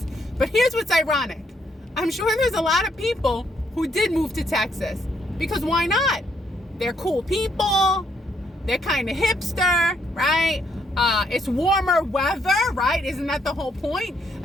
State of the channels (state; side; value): normal; both; correlation 0.72